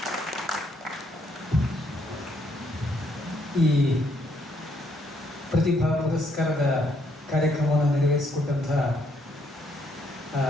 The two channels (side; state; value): both; normal; correlation 0.71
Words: ಈ ಪ್ರತಿಭಾ ಪುರಸ್ಕಾರದ ಕಾರ್ಯಕ್ರಮವನ್ನು ನೆರವೇರಿಸಿಕೊಟ್ಟಂತಹ